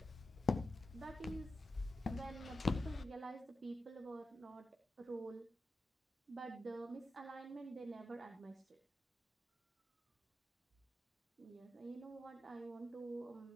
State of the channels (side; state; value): both; normal; correlation 0.91